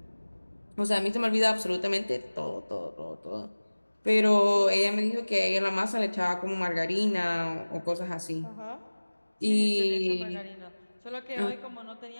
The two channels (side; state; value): both; inverted; correlation -1.00